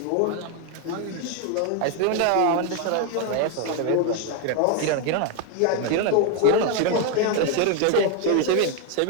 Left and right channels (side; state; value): both; different; correlation 0.01